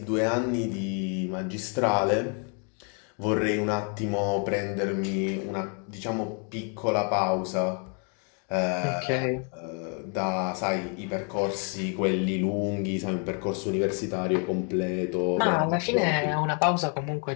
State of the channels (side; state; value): right; quieter; 39.2 dB